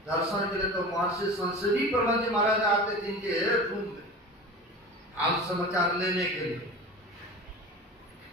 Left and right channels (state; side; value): normal; both; correlation 0.34